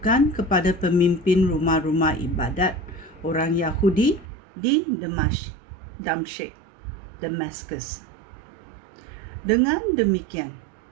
kepada pemimpin rumah-rumah ibadat orang Yahudi di Damaskus. Dengan demikian,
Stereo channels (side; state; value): left; drops out; at 4.2 s